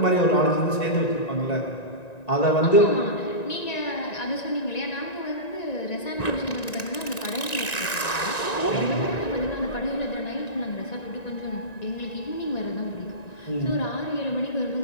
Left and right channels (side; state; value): right; late; 1.9 ms